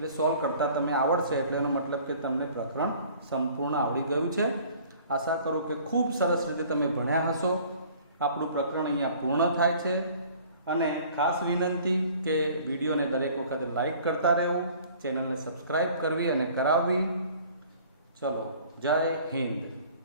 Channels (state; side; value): inverted; both; correlation -0.51